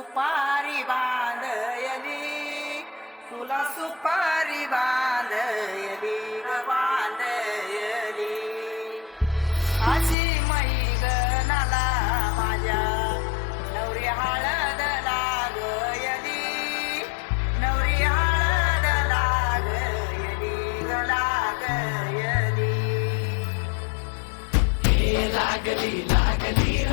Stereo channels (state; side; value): drops out; right; at 10.2 s